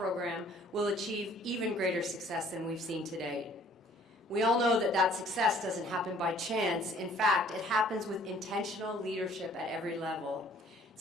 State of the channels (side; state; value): both; normal; correlation 0.57